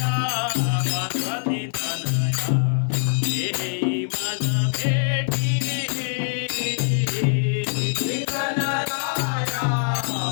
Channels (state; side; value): silent; right; digital silence